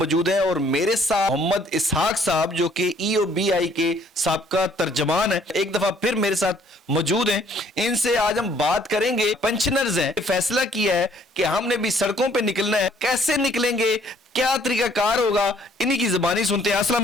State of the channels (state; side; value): normal; both; correlation 0.62